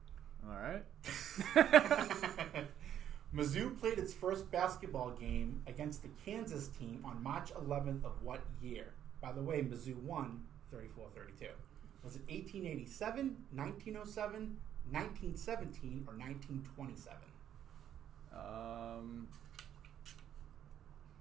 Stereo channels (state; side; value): quieter; left; 10.3 dB